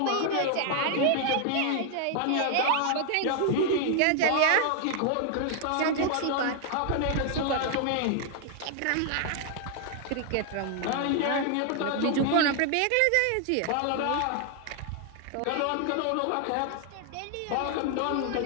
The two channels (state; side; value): different; both; correlation 0.00